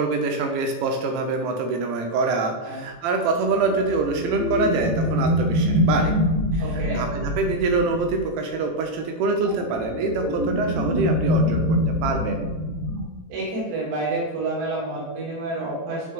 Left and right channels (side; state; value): left; late; 18 ms